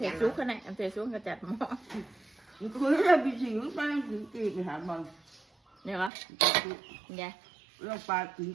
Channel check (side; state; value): left; drops out; at 6.1 s